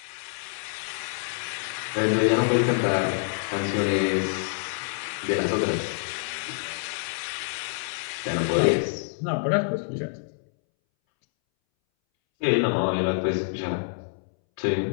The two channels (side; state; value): right; silent; 60 dB below the other